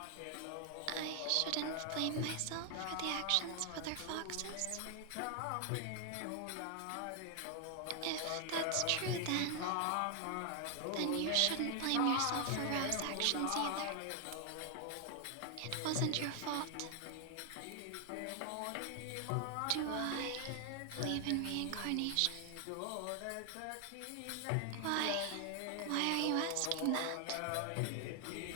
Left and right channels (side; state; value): both; different; correlation 0.00